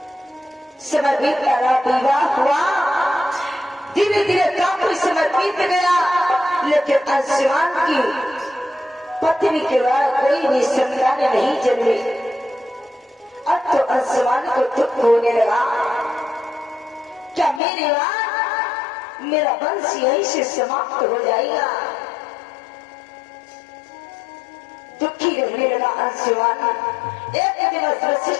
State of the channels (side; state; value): right; drops out; at 17.6 s